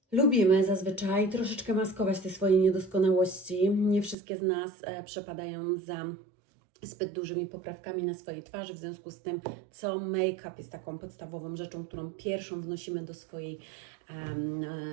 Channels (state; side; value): drops out; left; at 4.2 s